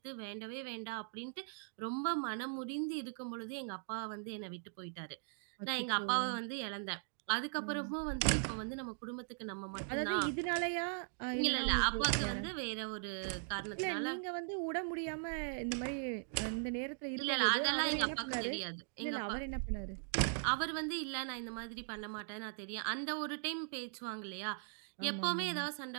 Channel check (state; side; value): silent; left; digital silence